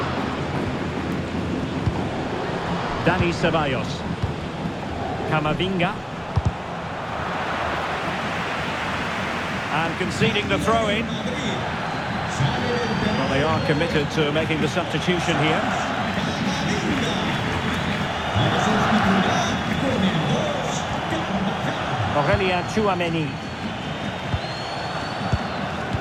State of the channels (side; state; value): both; identical; correlation 1.00